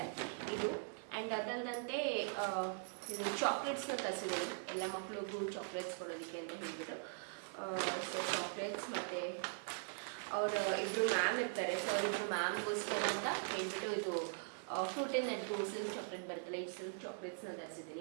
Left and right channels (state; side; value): silent; left; 50 dB below the other